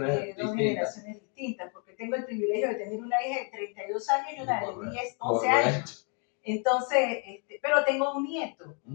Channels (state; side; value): quieter; right; 39.3 dB